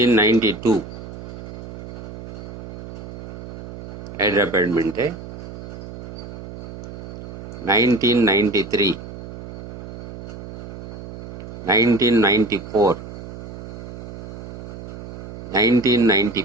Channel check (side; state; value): right; noise; hum, 10 dB below the sound